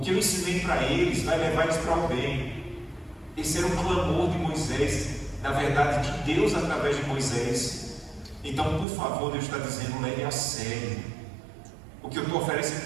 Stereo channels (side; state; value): left; drops out; at 8.8 s